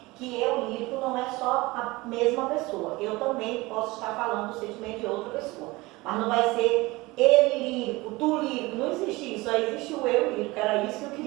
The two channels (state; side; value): quieter; left; 21.7 dB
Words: que eu lírico não é só a mesma pessoa. Eu também posso estar falando do sentimento de outra pessoa, mas não vai ser ele lírico, tu lírico, não existe isso, só existe o eu lírico. Era isso que eu